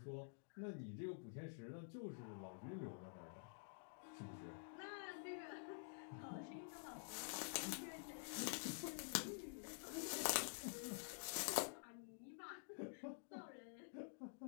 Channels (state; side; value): silent; right; digital silence